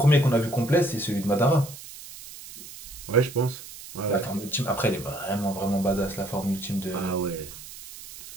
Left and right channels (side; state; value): right; noise; hiss, 15 dB below the sound